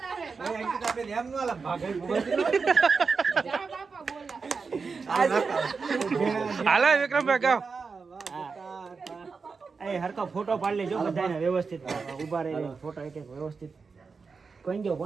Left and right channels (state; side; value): quieter; left; 4.9 dB